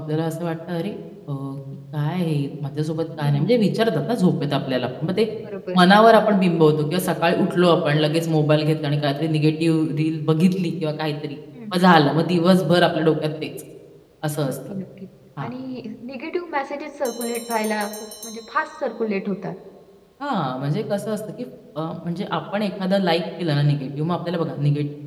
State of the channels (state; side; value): identical; both; correlation 1.00